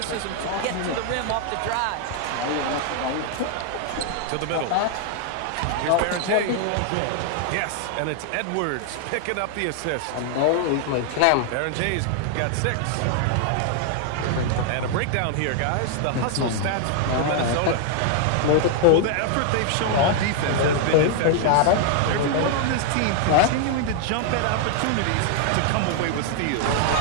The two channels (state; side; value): different; both; correlation 0.00